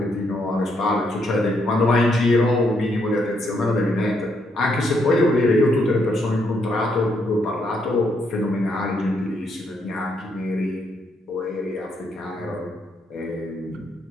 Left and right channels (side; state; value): both; normal; correlation 0.75